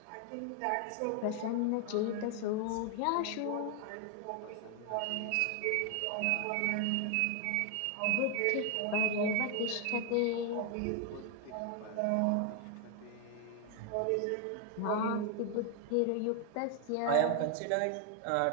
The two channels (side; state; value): both; different; correlation 0.01